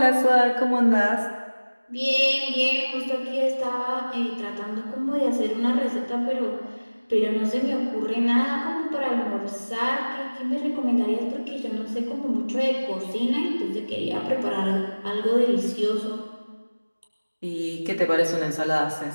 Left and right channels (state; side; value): inverted; both; correlation -1.00